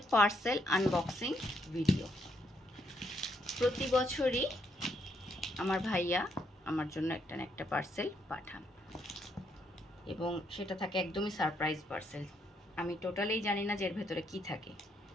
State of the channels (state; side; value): normal; both; correlation 0.75